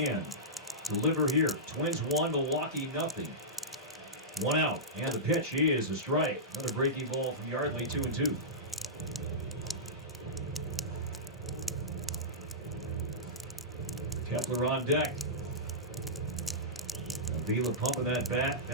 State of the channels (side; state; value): both; normal; correlation -0.14